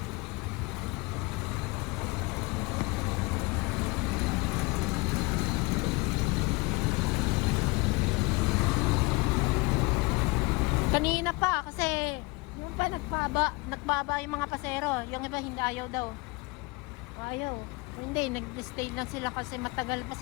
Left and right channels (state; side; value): quieter; right; 25.6 dB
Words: Kanina pa kasi yung pa nagbaba yung mga pasero. Yung iba hindi ayaw daw. Ayaw. Hindi, nag-stay lang sila kasi matagal pa